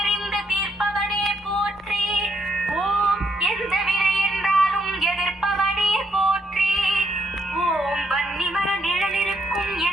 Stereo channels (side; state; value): both; normal; correlation 0.74